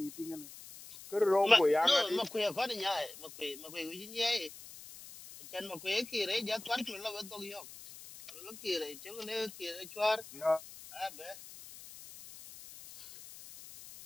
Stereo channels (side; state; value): left; noise; hiss, 16 dB below the sound